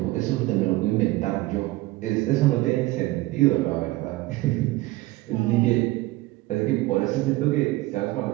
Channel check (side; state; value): left; quieter; 19.3 dB